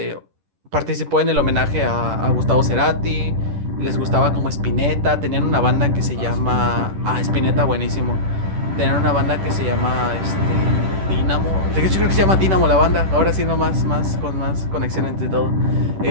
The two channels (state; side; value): late; left; 10 ms